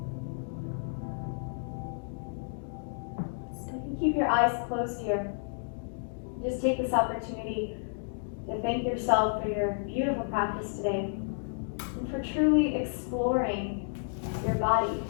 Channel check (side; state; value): right; silent; digital silence